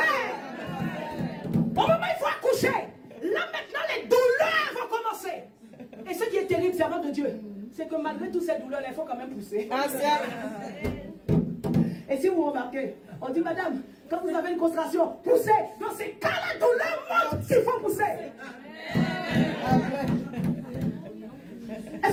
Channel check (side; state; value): both; identical; correlation 1.00